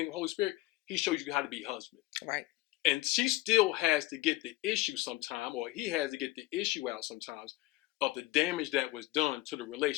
of the Holy Spirit, he shows you how to be husband. Right. And she still has to get the issue sometime, or he has to get the issue out sometimes of the damage that was done to the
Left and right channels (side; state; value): right; quieter; 18.3 dB